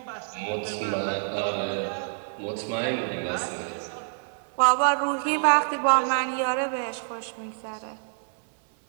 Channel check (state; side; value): silent; left; 58 dB below the other